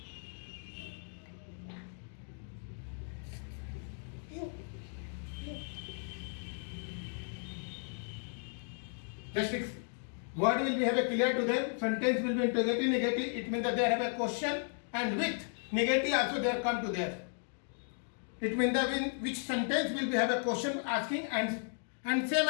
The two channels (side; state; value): right; silent; 54 dB below the other